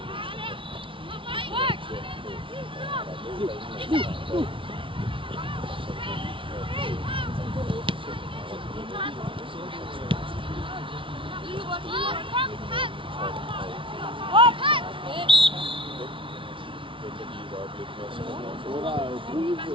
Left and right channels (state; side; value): late; left; 0.25 ms